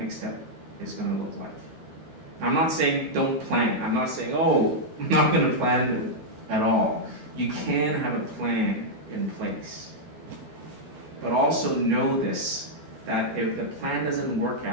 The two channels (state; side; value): late; left; 13 ms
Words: step is going to look like. I'm not saying don't plan. I'm not saying, oh, I'm not going to plan at all. You can have a plan in place. But also know this, that if the plan doesn't work